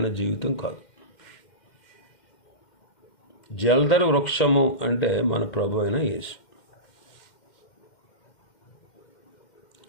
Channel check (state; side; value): late; right; 2.1 ms